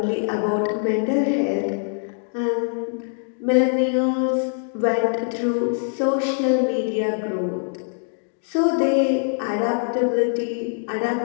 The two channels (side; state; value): right; silent; 57 dB below the other